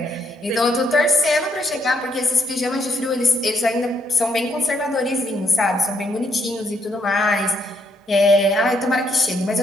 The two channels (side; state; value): both; normal; correlation 0.73